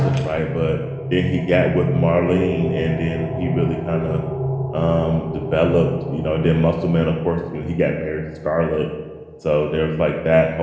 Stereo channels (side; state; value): both; identical; correlation 1.00